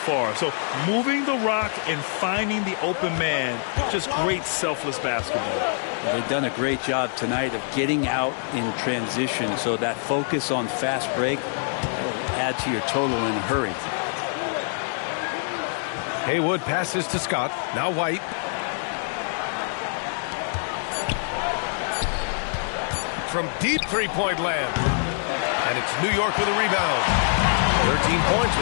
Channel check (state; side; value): silent; right; digital silence